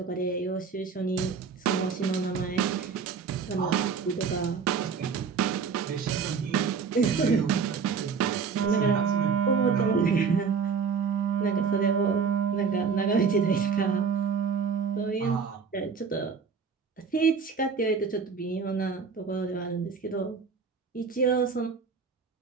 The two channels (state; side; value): quieter; left; 5.7 dB